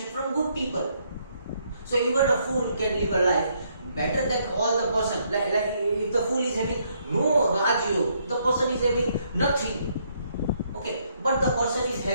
from good people. So even a fool can live a life better than all the person. Like if the fool is having no Raj Yoga, the person is having nothing. Okay, but the person is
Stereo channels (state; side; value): inverted; both; correlation -0.72